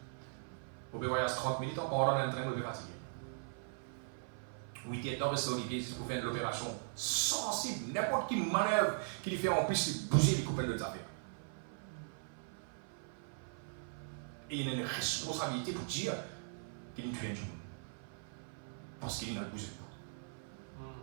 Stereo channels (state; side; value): silent; left; 51 dB below the other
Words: Vous pouvez voyager 30 minutes en pendant un train, vous pouvez fatiguer. 8 dans le sol, c'est pour faire l'opération sensible. N'importe qui manœuvre qui lui fait en plus bouger les coupelles de affaires. Et il a une responsabilité pour dire qu'il tue un du monde. Parce qu'il n'a bougé pas.